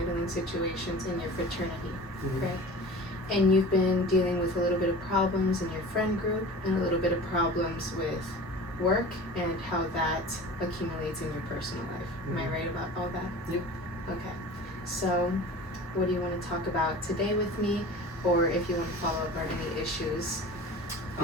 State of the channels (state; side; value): normal; both; correlation 0.39